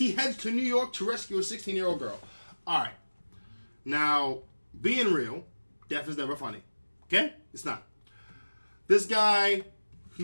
heads to New York to rescue a 16-year-old girl. All right. Now, being real, death is never funny. Okay? It's not. This guy, he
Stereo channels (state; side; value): inverted; both; correlation -1.00